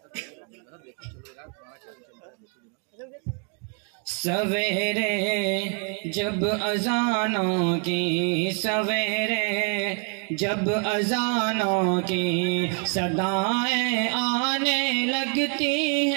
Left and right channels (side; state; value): left; quieter; 38.0 dB